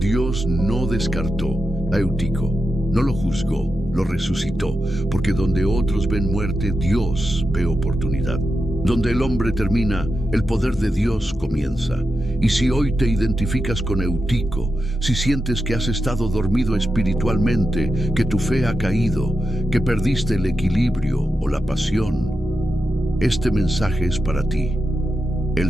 no descartó a Eutico, no lo juzgó, lo resucitó, porque donde otros ven muerte, Dios ve oportunidad. Donde el hombre termina, el poder de Dios comienza. Y si hoy te identificas con Eutico, si sientes que has estado dormido espiritualmente, que tu fe ha caído, que perdiste el equilibrio o la pasión, este mensaje es para ti.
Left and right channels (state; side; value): normal; both; correlation 0.89